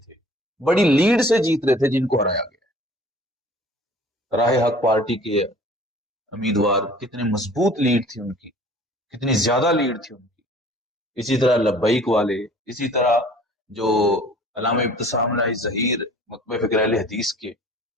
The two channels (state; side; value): normal; both; correlation 0.49